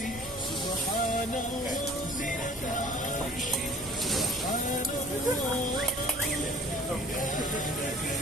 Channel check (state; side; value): normal; both; correlation 0.50